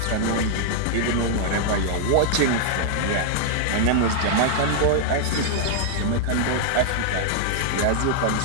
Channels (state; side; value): different; both; correlation -0.01